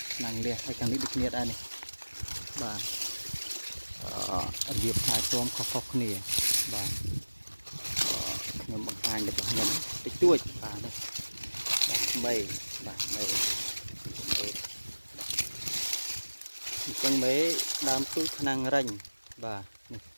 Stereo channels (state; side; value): inverted; both; correlation -1.00